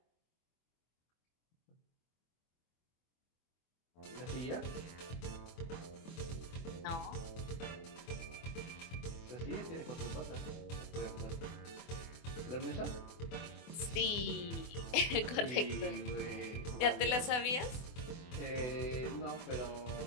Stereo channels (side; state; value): right; late; 24 ms